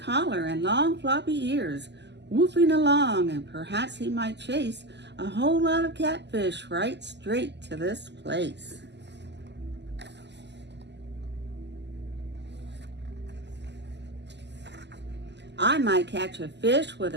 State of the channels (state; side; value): late; left; 0.50 ms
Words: and long floppy ears, woofing along, and perhaps he might chase a whole lot of catfish right straight to this place." "I might catch a fish with